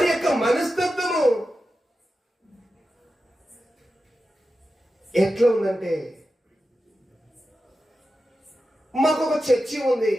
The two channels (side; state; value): both; normal; correlation 0.91